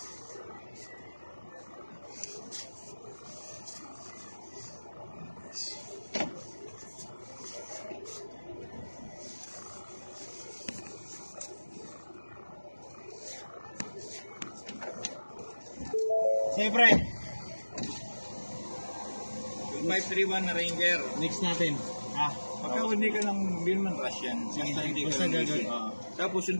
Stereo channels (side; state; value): both; inverted; correlation -1.00